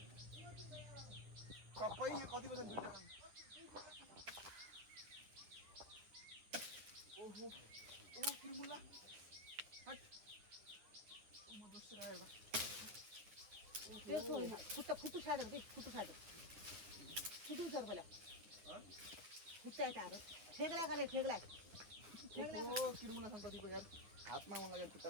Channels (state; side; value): late; left; 9.7 ms